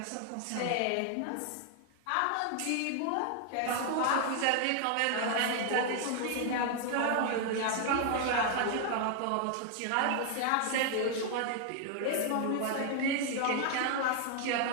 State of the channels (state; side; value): different; both; correlation 0.00